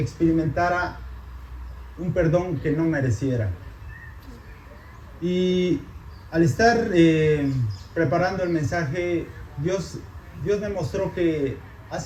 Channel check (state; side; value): identical; both; correlation 1.00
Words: experimentara un perdón que no mereciera. Y al estar preparando el mensaje, Dios me mostró que